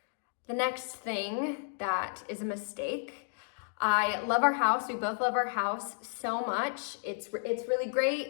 the next thing that is a mistake, I love our house. We both love our house so much. It's really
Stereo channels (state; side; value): silent; right; digital silence